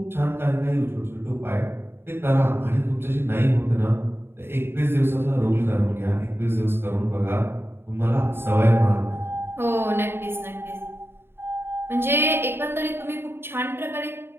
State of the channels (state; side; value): late; left; 0.11 ms